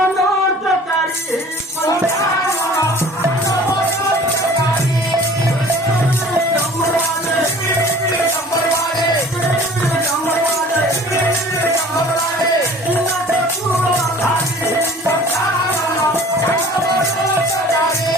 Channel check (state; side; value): normal; both; correlation 0.47